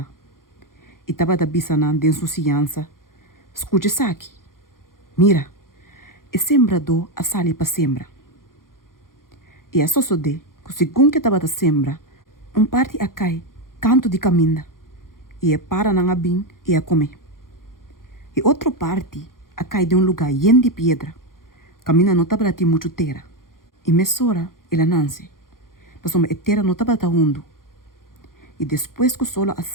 E estava da bisa não de insouciança. Escute isso aqui. Mira, e sembrador a sali para sembra. E a sosode, que segundo que estava da sembra, parte a cai, canto de caminha, e para na abin e a comer. E outra parte a cai de lugar yen de pedra, caminha não estava de muito terra. E mesora ela nasce, mas a terra não estava hundo. E depois que o sol a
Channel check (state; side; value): late; right; 0.91 ms